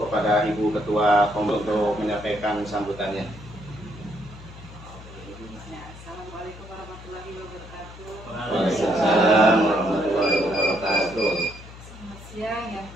kepada Ibu Ketua Kom untuk menyampaikan sambutannya. Waalaikumsalam warahmatullahi wabarakatuh. Selamat siang yang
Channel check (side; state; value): left; noise; hum, 17 dB below the sound